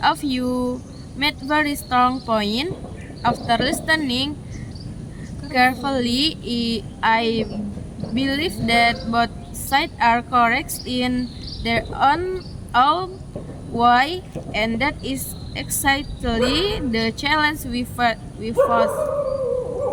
of you made very strong point. After listening carefully, I believe that both sides are correct in their own way, and that is exactly the challenge we face.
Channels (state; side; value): identical; both; correlation 1.00